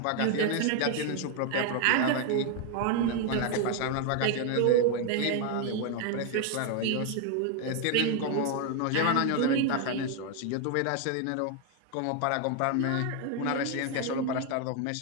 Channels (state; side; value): different; both; correlation 0.01